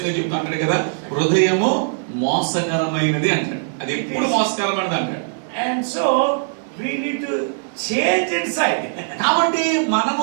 చెప్తా ఉంటాడు కదా, హృదయము మోసకరమైనది అంటాడు. అది ఎప్పుడు మోసకరమైనది అంటాడు. And so we need to change inside. కాబట్టి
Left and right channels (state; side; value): silent; left; digital silence